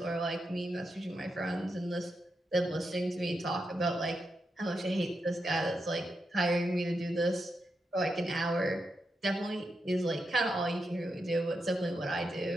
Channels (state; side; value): normal; both; correlation 0.86